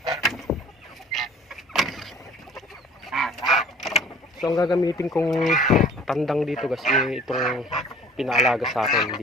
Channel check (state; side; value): normal; both; correlation 0.50